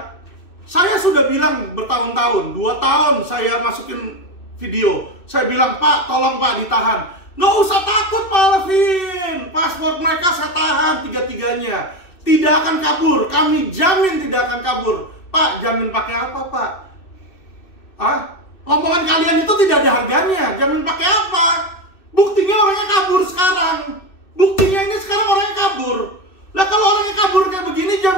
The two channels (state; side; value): late; right; 2.6 ms